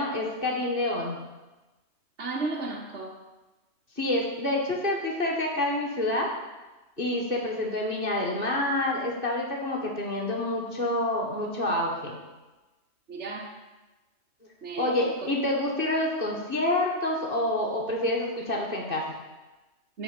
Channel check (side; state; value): left; late; 2.6 ms